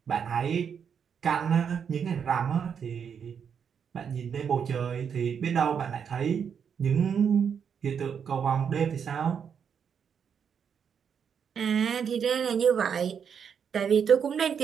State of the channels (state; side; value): quieter; left; 7.3 dB